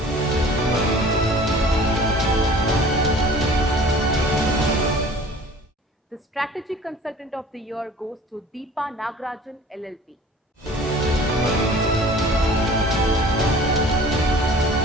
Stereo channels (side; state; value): both; normal; correlation 0.46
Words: the Strategy Consultant of the Year goes to Deepa Nagarajan LLP.